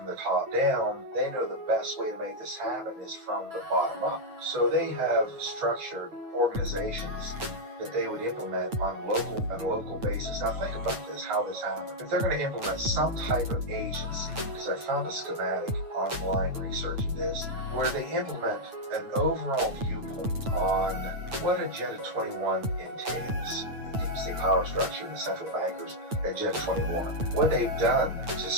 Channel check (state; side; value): late; left; 9.0 ms